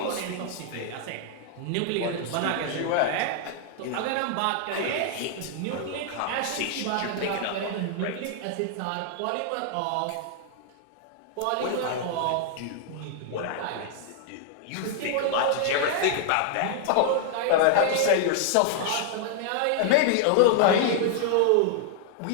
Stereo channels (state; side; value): different; both; correlation -0.01